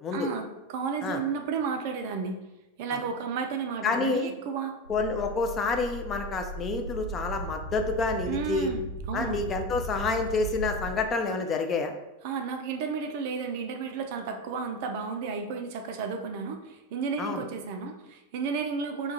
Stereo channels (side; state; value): both; normal; correlation 0.21